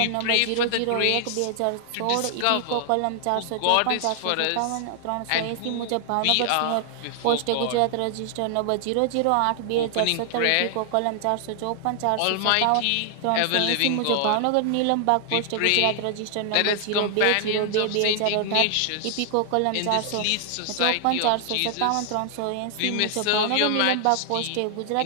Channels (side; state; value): both; different; correlation 0.00